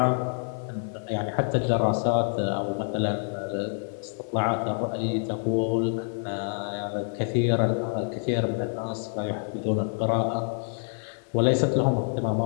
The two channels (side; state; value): right; silent; 60 dB below the other